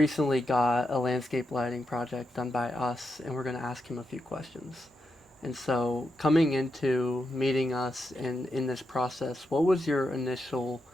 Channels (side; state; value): both; normal; correlation 0.85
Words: got a landscape lighting project done by us, and we're going to ask him a few questions. And so, coming into meeting us in this process, what was your initial